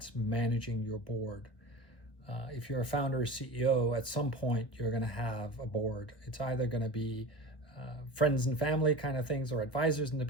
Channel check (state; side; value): late; right; 1.0 ms